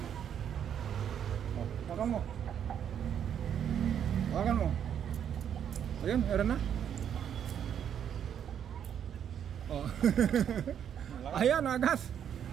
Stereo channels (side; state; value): left; quieter; 9.0 dB